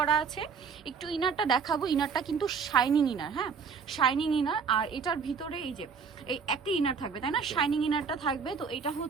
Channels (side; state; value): left; quieter; 5.8 dB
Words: আছে। একটু ইনারটা দেখাবো। ইনারটা কিন্তু শাইনিং ইনার, হ্যাঁ, শাইনিং ইনার। আর এটার ভিতরে এই যে এই একটা ইনার থাকবে, তাই না? শাইনিং ইনারটা থাকবে। তো এটা